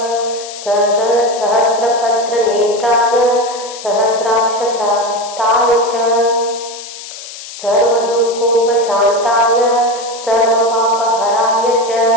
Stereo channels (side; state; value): left; noise; hiss, 13 dB below the sound